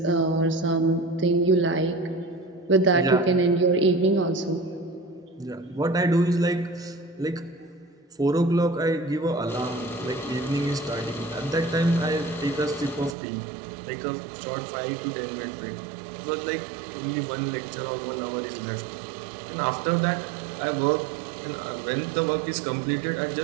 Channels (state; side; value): drops out; left; at 13.2 s